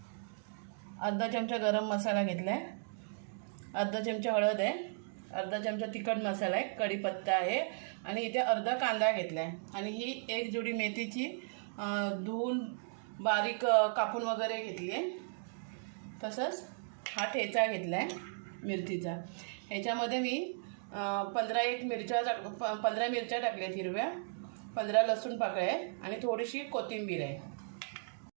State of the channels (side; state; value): left; silent; digital silence